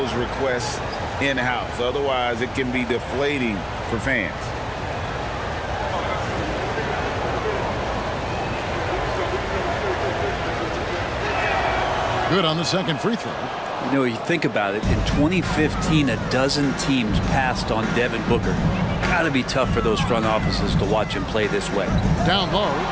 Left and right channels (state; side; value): identical; both; correlation 1.00